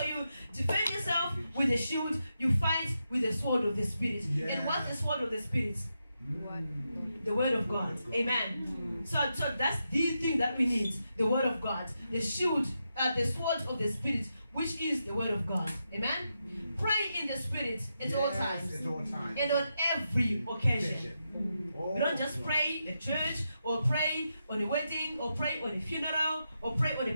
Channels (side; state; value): both; inverted; correlation -0.85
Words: you defend yourself with a shield. You fight with the sword of the Spirit. And what's the sword of the Spirit? The word of God. Amen? So that's the thing that we need. The word of God. The shield, the sword of the Spirit, which is the word of God. Amen? Pray in the Spirit at all times. At all times. And on every occasion. We don't just pray at church, or pray on a wedding, or pray on a funeral, or pray on a